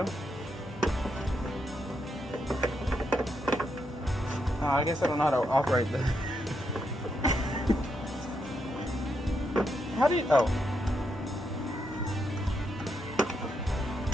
Oh, I guess I don't know how to operate this. How do you... Oh.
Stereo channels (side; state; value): both; normal; correlation 0.81